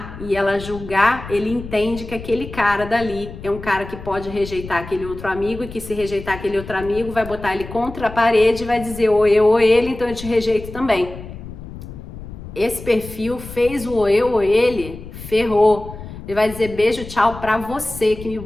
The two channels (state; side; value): noise; left; rumble, 13 dB below the sound